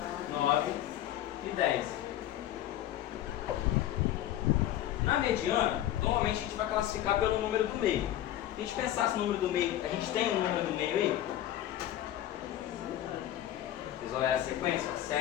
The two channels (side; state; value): right; quieter; 12.7 dB